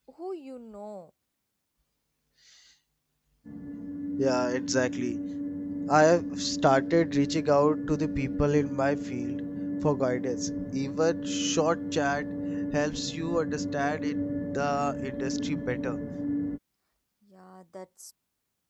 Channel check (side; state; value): both; identical; correlation 1.00